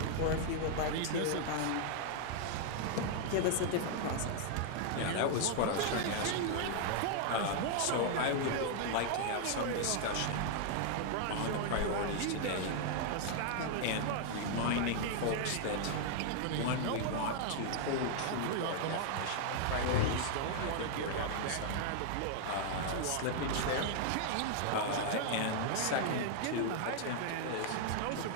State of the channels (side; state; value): both; different; correlation 0.00